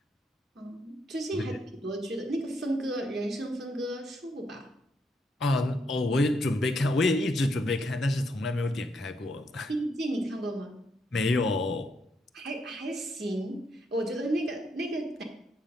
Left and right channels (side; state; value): both; normal; correlation 0.77